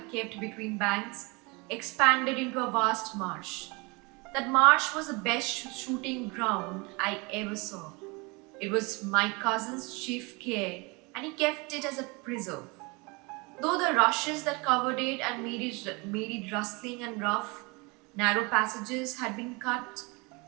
kept between banks, expanded into a vast marsh. That marsh was the best shooting ground I ever saw. It was my cousin's chief care, and he kept it as a preserve. Though the rushes that covered it and made it rustling and rough, narrow passages had been cut,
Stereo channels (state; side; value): quieter; left; 27.7 dB